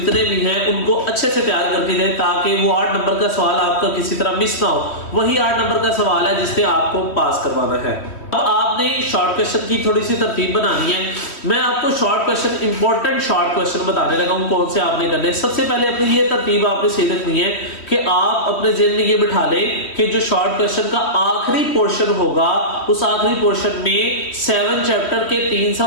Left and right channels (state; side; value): late; right; 3.1 ms